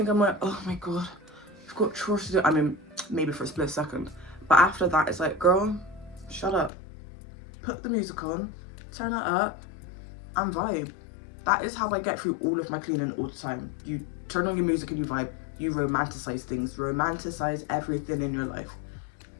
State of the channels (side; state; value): right; drops out; at 6.7 s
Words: I'm like, oh my god, I've got chores to do? I mean, maybe for a split second. But after that, it's like, girl, shut up. Put the music on, turn it up, and vibe. That is how I get through all of my cleaning all the time. You turn on your music and you vibe. You romanticize things. Romanticize everything in your life.